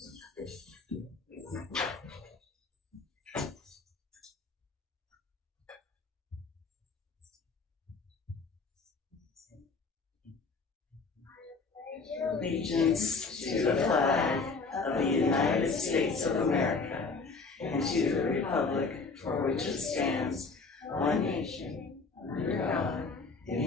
Allegiance to the flag of the United States of America and to the republic for which it stands, one nation, under God,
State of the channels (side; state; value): right; quieter; 4.3 dB